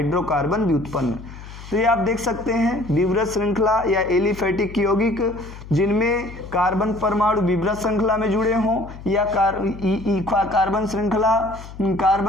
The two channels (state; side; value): noise; left; hum, 15 dB below the sound